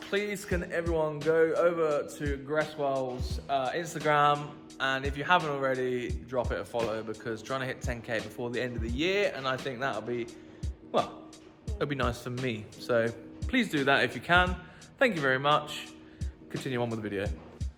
can everyone go over to Gresswell's Instagram, and if you haven't already, drop it a follow, because trying to hit 10k before the end of the year, and I think that'll be, well, it'll be nice for me. So please do that if you can. Thank you very much. Continue on with the video.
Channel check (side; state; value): both; identical; correlation 1.00